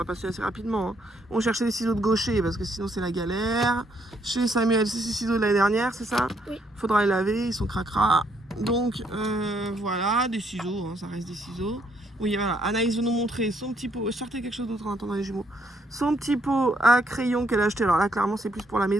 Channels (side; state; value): both; normal; correlation 0.72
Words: passer assez rapidement. Hein. On cherchait des ciseaux de gaucher parce que sinon c'est la galère. Chez Samuel, c'est ces ciseaux de l'année dernière, c'est ça? Oui. Faudra les laver, ils sont cracra. Donc voilà, des ciseaux, hein, ça reste des ciseaux. Oui, voilà, Anaïs veut nous montrer son petit pot. Sortez quelque chose d'autre en attendant les jumeaux. Son petit pot à crayon qu'elle a acheté. Alors là, clairement, c'est plus pour la